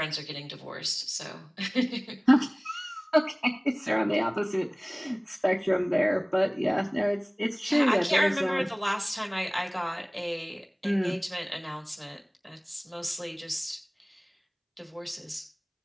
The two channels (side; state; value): both; identical; correlation 1.00